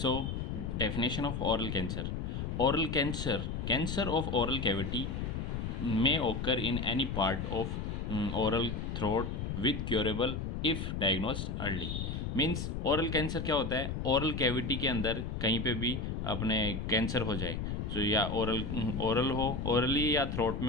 definition of oral cancer. Oral cancer, cancer of oral cavity may occur in any part of oral throat with curable if diagnosed early। Means oral cancer क्या होता है? Oral cavity के अंदर कहीं पे भी अपने कैंसर हो जाए, तो या ओरल हो, ओरली या थ्रोट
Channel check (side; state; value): left; noise; rumble, 3 dB below the sound